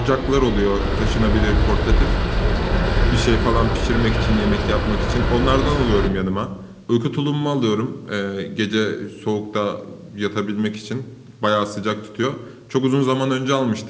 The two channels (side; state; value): both; identical; correlation 1.00